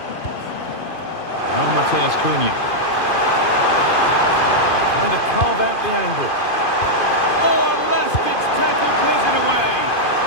Now Mateus Cunha. Trying to carve out the angle. Oh, unless it's tackled, clears it away.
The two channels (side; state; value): right; late; 2.5 ms